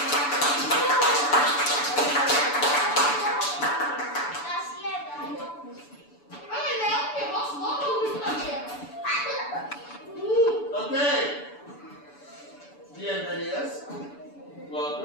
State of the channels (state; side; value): late; right; 6.9 ms